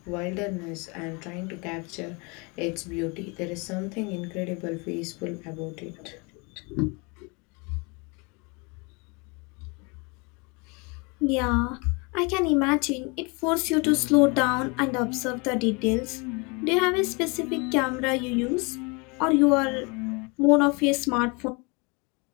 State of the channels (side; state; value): right; quieter; 29.9 dB